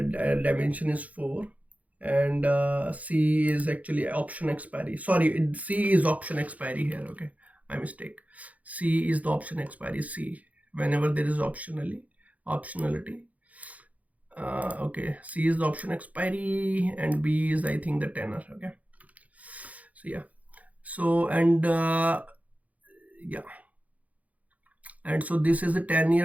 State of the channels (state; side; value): late; left; 0.072 ms